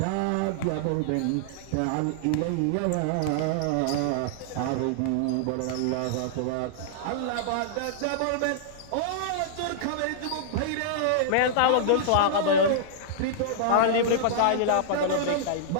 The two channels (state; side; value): different; both; correlation -0.02